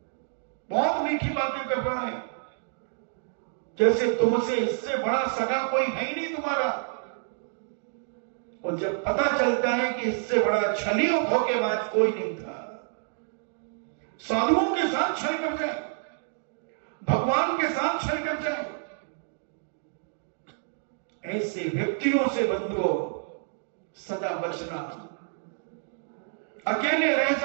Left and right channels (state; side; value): silent; left; digital silence